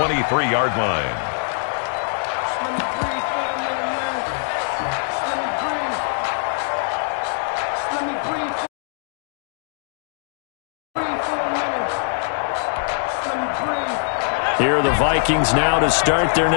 line. Here are the Vikings now to start their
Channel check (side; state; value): right; silent; 63 dB below the other